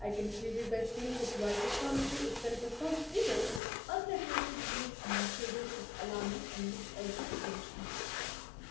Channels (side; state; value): right; drops out; at 3.6 s